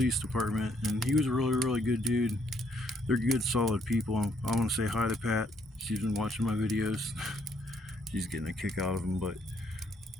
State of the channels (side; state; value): both; normal; correlation 0.70